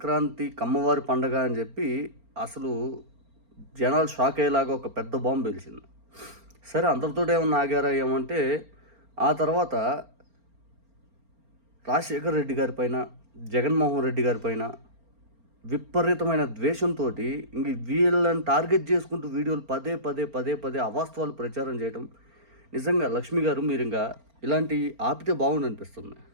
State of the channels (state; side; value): late; left; 4.4 ms